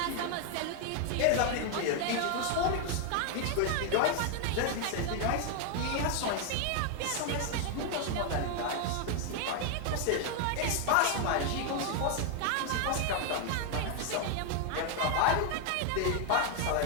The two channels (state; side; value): different; both; correlation 0.01